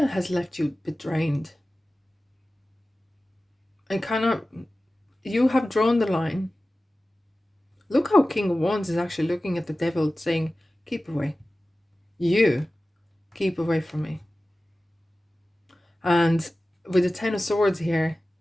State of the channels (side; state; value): both; normal; correlation 0.96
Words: has left you a bit drained. And kind of, you have drawn the line. Look how King of Wands is actually looking at the devil saying, keep away. You keep away from me. And with the Ten of Swords here,